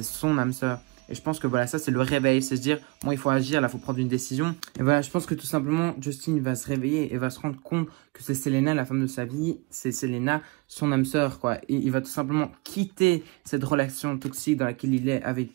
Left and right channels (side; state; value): left; quieter; 26.7 dB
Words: son âme sœur. Et je pense que voilà, ça c'est le réveil, c'est se dire, bon, il faut agir, là, il faut prendre une décision. Et voilà, je pense que tout simplement, Justin va se réveiller et va se rendre compte que c'est Selena, la femme de sa vie, c'est Selena, son âme sœur, quoi. Et il va tout simplement quitter cette relation toxique dans laquelle il est avec